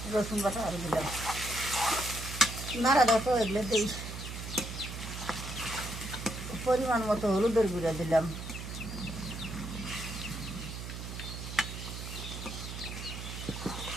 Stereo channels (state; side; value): noise; right; hum, 8 dB below the sound